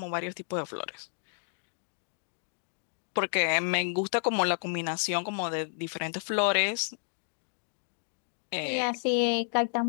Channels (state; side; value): silent; right; digital silence